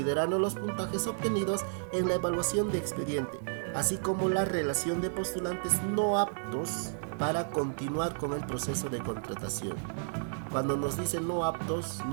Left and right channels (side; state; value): left; silent; 57 dB below the other